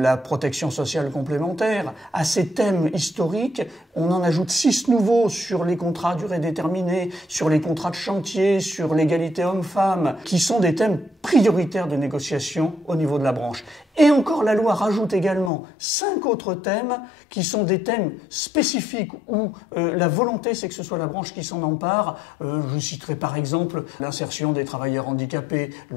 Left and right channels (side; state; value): right; drops out; at 15.5 s